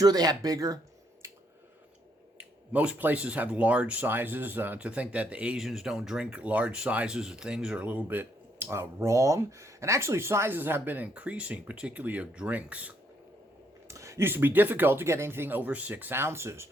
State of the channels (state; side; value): normal; both; correlation 0.73